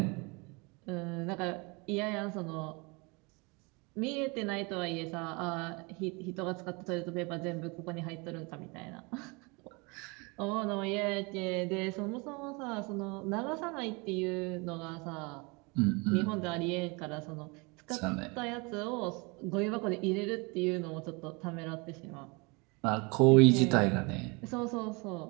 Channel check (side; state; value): left; quieter; 28.6 dB